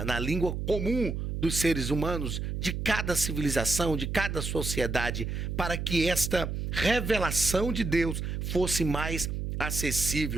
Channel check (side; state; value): right; noise; hum, 3 dB below the sound